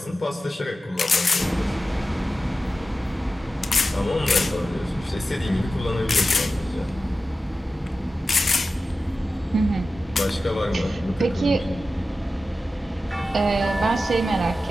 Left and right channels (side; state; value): both; normal; correlation 0.93